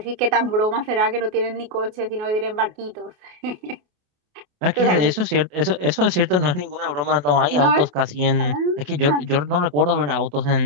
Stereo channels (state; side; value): late; left; 27 ms